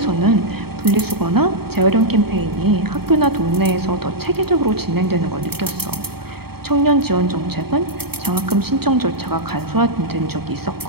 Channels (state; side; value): late; left; 0.96 ms